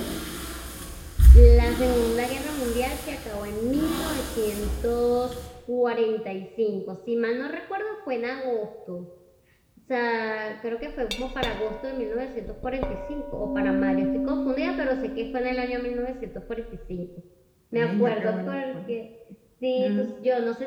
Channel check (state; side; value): identical; both; correlation 1.00